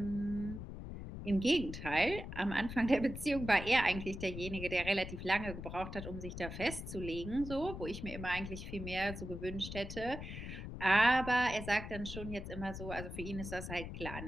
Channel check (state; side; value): noise; left; rumble, 8 dB below the sound